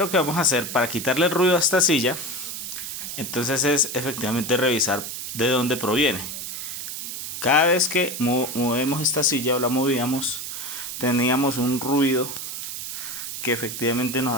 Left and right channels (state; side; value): noise; right; hiss, 6 dB below the sound